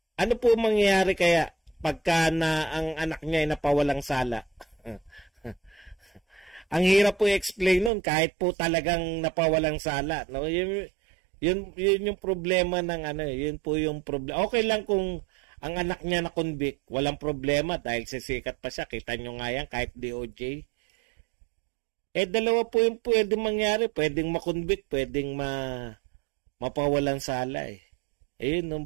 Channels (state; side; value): drops out; left; at 7.9 s